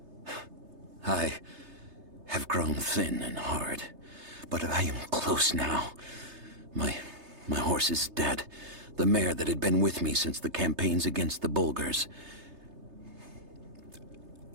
I have grown thin and hard, but I am close now. My horse is dead. The mare that had been with me since the campaigns against the Bulgars.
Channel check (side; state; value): left; late; 3.3 ms